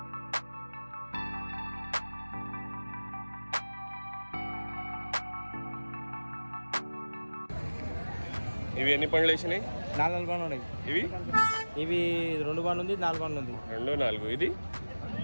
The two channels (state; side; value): inverted; both; correlation -1.00